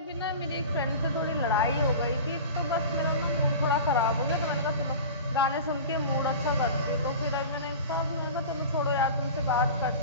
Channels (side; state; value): both; inverted; correlation -0.34